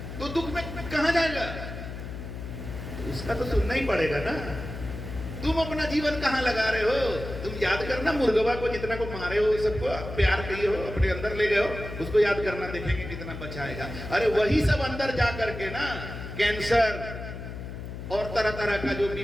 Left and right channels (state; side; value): noise; left; hum, 9 dB below the sound